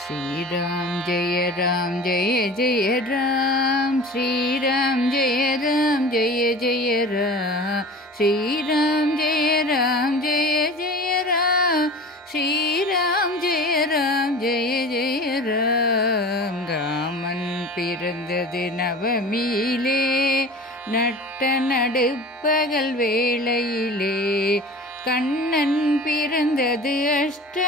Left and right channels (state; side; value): normal; both; correlation 0.38